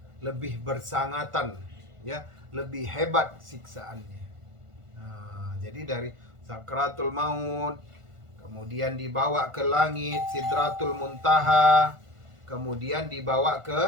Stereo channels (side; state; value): left; late; 1.5 ms